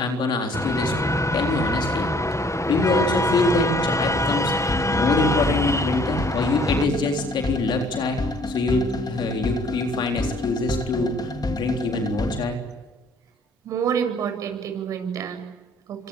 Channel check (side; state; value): both; normal; correlation 0.59